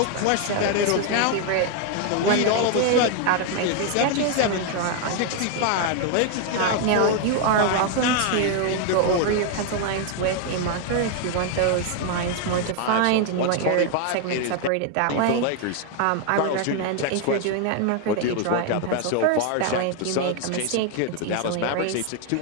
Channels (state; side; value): different; both; correlation 0.00